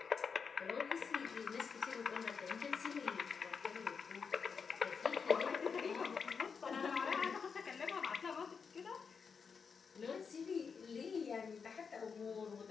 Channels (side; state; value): right; quieter; 5.8 dB